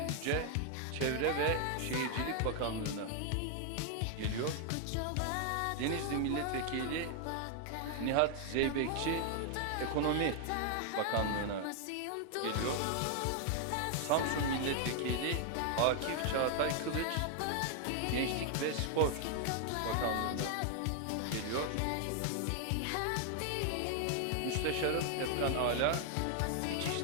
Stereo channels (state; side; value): different; both; correlation 0.00